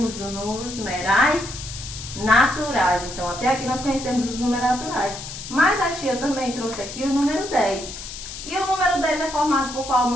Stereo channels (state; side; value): noise; left; hiss, 10 dB below the sound